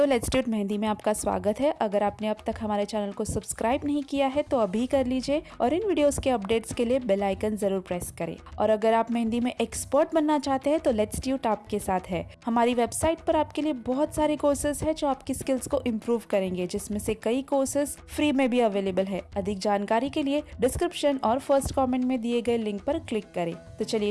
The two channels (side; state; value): both; identical; correlation 1.00